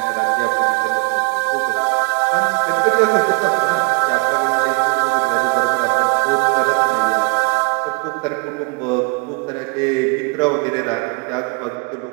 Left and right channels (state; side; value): quieter; left; 31.6 dB